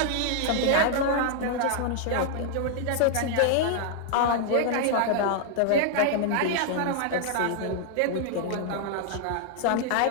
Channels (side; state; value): both; different; correlation 0.00